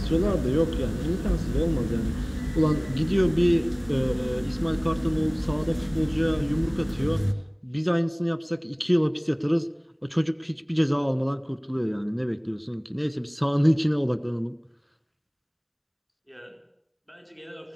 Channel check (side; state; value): both; identical; correlation 1.00